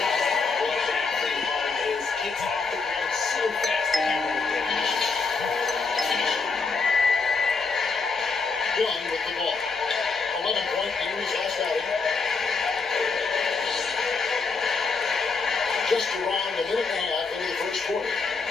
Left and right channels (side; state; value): right; quieter; 4.5 dB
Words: What exactly hard is gets off the ground so fast that you won't get it. Young with the ball. 11-point in his last outing. Just around a minute and a half into the first quarter.